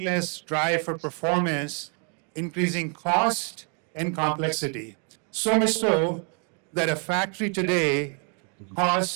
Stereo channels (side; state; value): left; quieter; 39.5 dB